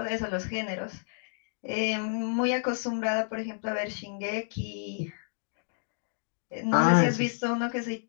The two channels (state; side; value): silent; right; digital silence